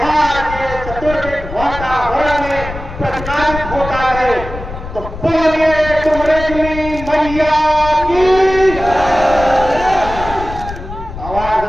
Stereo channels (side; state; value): left; noise; rumble, 10 dB below the sound